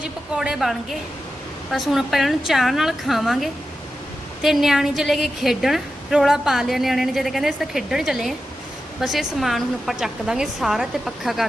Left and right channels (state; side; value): normal; both; correlation 0.91